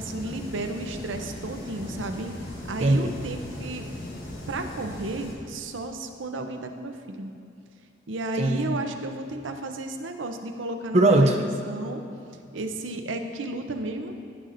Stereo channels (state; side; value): normal; both; correlation 0.54